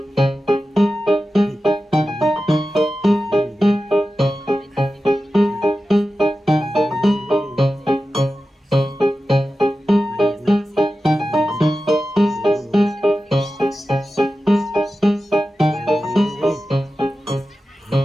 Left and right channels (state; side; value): normal; both; correlation 0.93